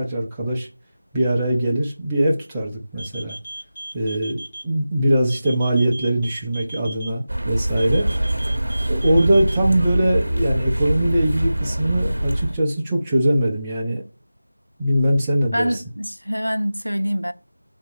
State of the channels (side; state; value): both; inverted; correlation -0.94